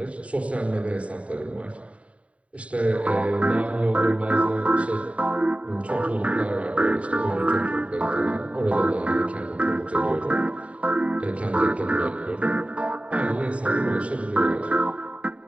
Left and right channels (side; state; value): left; late; 0.065 ms